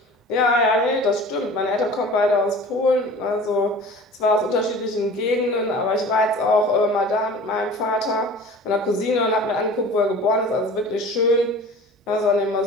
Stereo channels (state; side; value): normal; both; correlation 0.41